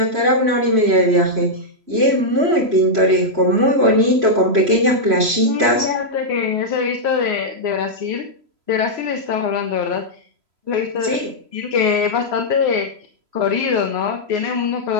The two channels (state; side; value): late; left; 3.0 ms